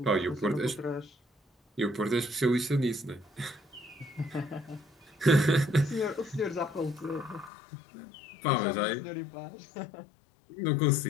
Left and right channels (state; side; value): drops out; right; at 7.5 s